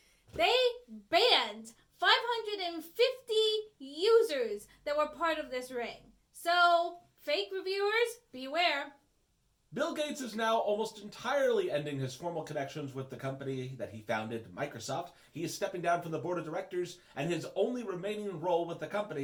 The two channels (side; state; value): both; identical; correlation 1.00